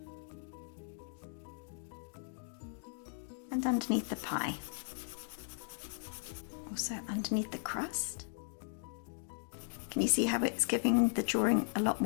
And underneath the pie. Also underneath the crust. Can you see how it's giving the drawing a lot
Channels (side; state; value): right; silent; digital silence